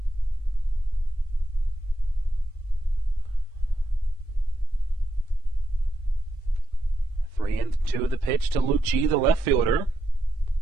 Three and 2 of the pitch to Lucci, the left fielder.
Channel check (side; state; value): both; normal; correlation 0.83